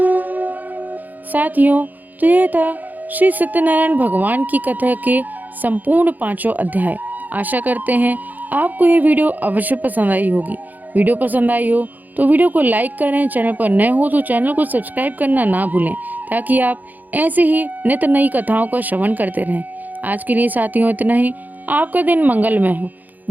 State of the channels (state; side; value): late; left; 0.083 ms